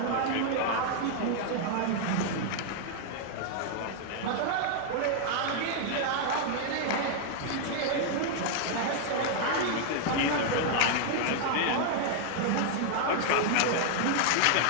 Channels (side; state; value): both; different; correlation 0.00